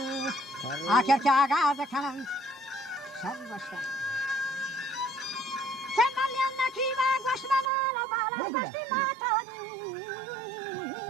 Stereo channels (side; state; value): left; drops out; at 7.7 s